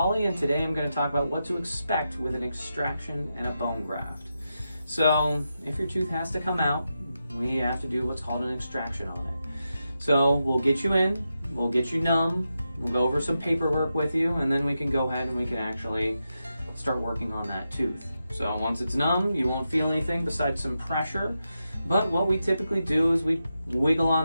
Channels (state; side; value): inverted; both; correlation -0.88